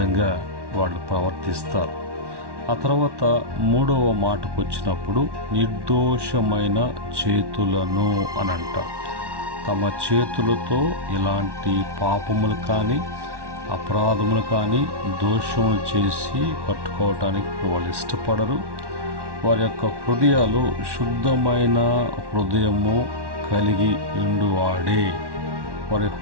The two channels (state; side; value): late; left; 1.1 ms